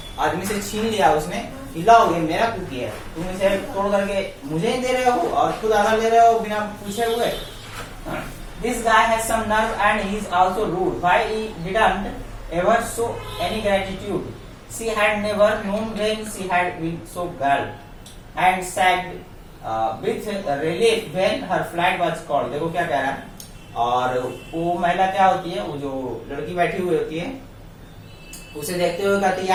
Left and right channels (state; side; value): identical; both; correlation 1.00